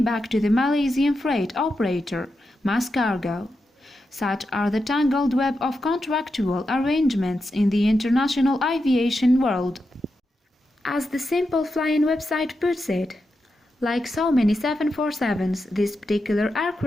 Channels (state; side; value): normal; both; correlation 0.88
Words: back to the Malaysian freight operator, Mas Cargo. Such are the tangled web of contractual arrangements in the international aviation world. As the Simple Flying website puts it, like so many 747s, this particular